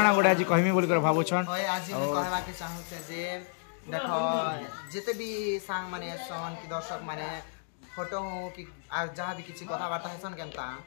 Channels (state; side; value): silent; right; digital silence